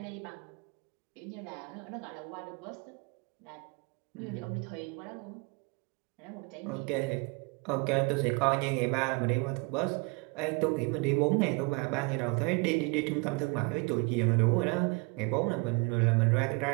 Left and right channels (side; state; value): left; quieter; 29.6 dB